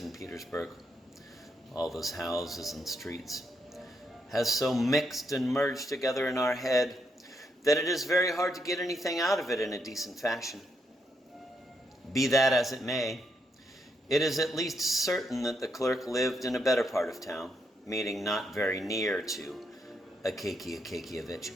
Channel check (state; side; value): normal; both; correlation 0.78